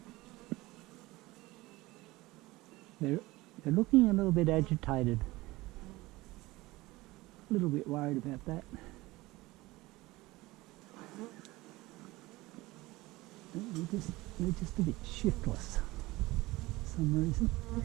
They're looking a little bit agitated. A little bit worried about that. They're just a bit shiftless for some reason.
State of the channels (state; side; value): quieter; left; 20.0 dB